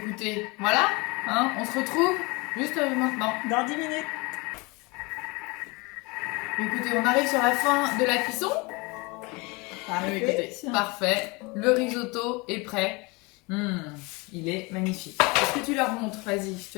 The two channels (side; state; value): right; quieter; 26.6 dB